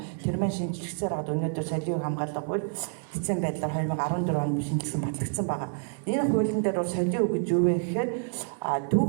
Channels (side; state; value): left; silent; 59 dB below the other